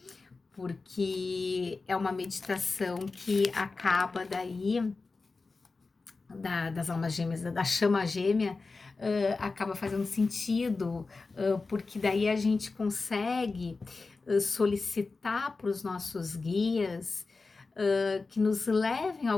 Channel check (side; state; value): right; quieter; 3.9 dB